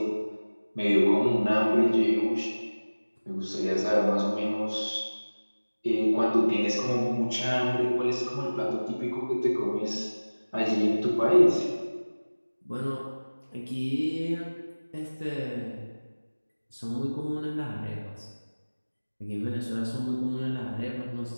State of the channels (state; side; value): inverted; both; correlation -1.00